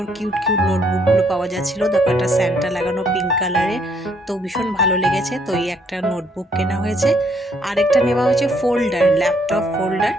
কিউট কিউট নোটবুকগুলো পাওয়া যাচ্ছিলো। দেখো একটা স্যান্টা লাগানো পিঙ্ক কালারে, তো ভীষণ ভালো লেগেছে। তো এই একটা নোটবুক কেনা হয়েছে। আরেকটা নেওয়া হয়েছে ফোল্ডার, ল্যাপটপ ফোল্ডার।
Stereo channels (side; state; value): both; normal; correlation 0.69